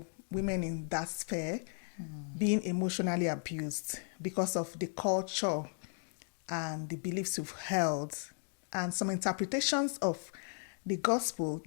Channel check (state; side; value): silent; right; 54 dB below the other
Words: women in that sphere, being emotionally abused because of the culture and the beliefs you've held, and some interpretations of the gospel